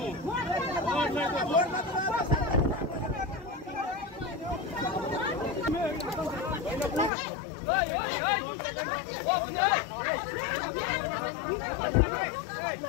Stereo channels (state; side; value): drops out; right; at 7.1 s